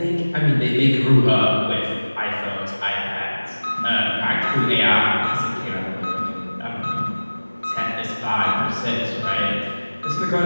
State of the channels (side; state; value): both; inverted; correlation -1.00